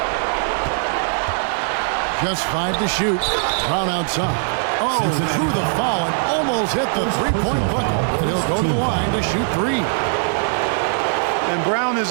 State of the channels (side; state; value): left; silent; digital silence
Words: Just 5 to shoot. Brown outside. Oh, through the foul and almost hit the three-point bucket. And he'll go to the line to shoot 3. And Brown